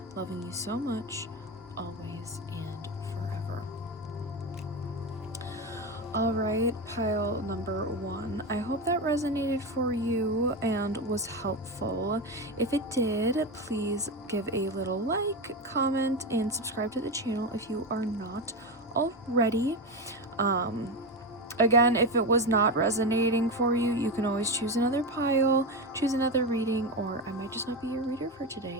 Loving you so much, always and forever. Alright, pile number 1. I hope that resonated for you and was helpful. If it did, please give a little like, comment, and subscribe to the channel if you are not already. Again, if it was not resonating for you, you can always choose another pile, choose another reading, or I might just not be your reader for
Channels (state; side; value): normal; both; correlation 0.16